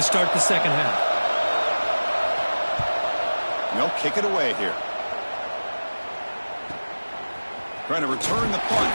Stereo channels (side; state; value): both; inverted; correlation -1.00